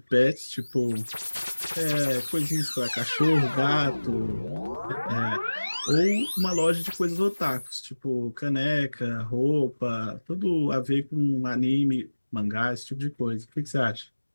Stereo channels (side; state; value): both; inverted; correlation -1.00